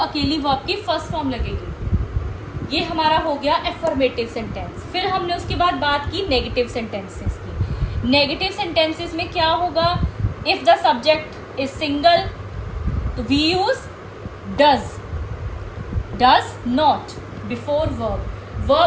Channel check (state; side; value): identical; both; correlation 1.00